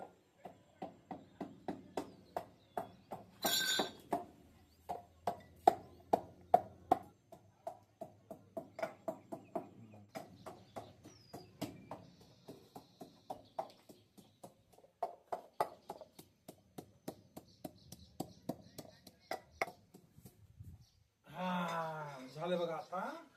झालं बघा आता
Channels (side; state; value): both; identical; correlation 1.00